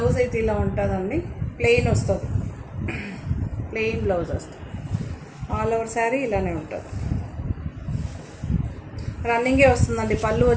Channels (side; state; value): both; identical; correlation 1.00